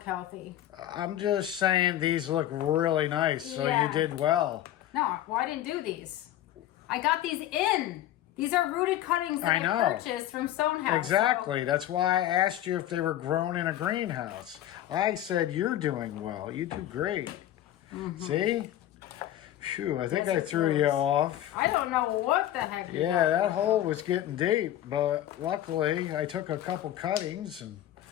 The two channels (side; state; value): right; quieter; 12.8 dB